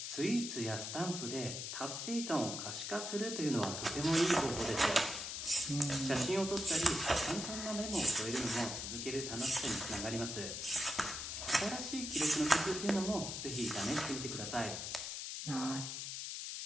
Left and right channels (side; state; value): left; noise; hiss, 5 dB below the sound